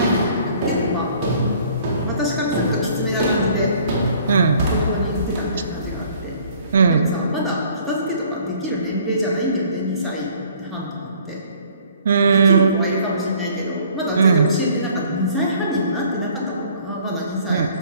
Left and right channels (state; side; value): inverted; both; correlation -0.57